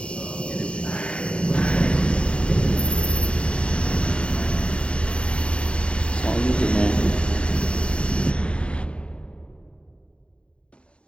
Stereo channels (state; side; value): late; right; 0.057 ms